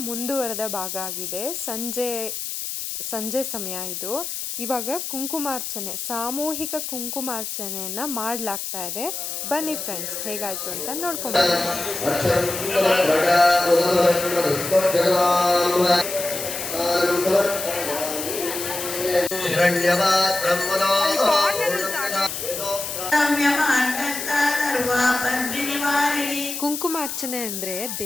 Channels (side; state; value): left; noise; hiss, 5 dB below the sound